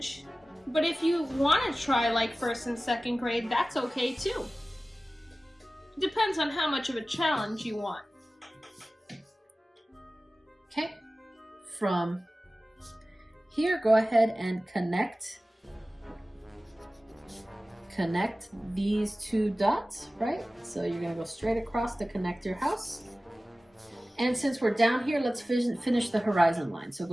but if you want to try like first and second grade, that's okay too. Depends on how much of a challenge you want. Okay, from here, go ahead and connect these two dots, right? So you're gonna go straight across to connect your house. And since we're down here, let's finish the horizon line. So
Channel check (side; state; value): both; normal; correlation 0.96